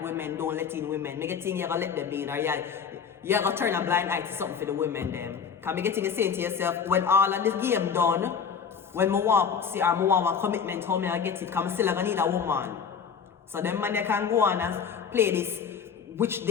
women, don't let in women. Me getting you gonna let them in, or you gonna turn a blind eye to something for the women them. Cause me getting you saying to yourself, when all of this game done, when me want see or me want a commitment, how me I get it, cause me still gonna need a woman. So them man they can go on and play this which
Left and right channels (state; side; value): quieter; right; 6.8 dB